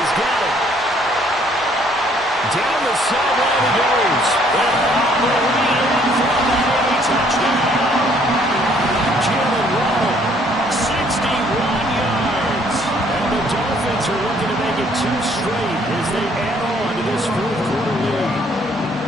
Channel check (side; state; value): both; normal; correlation 0.63